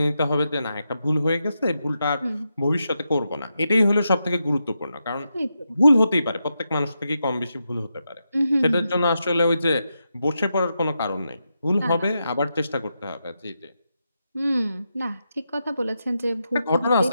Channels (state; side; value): inverted; both; correlation -0.86